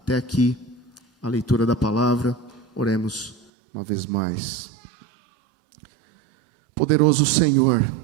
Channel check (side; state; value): left; drops out; at 3.5 s